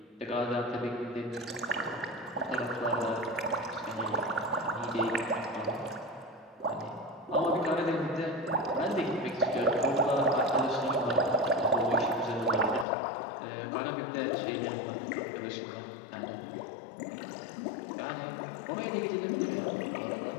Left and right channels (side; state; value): right; drops out; at 12.9 s